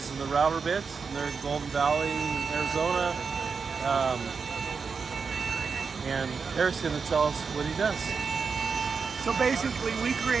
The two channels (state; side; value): quieter; left; 5.4 dB